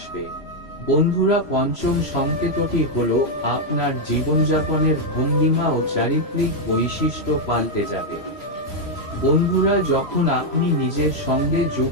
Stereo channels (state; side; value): late; right; 3.0 ms